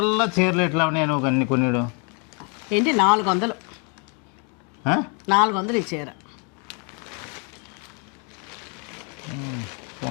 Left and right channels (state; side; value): quieter; right; 35.8 dB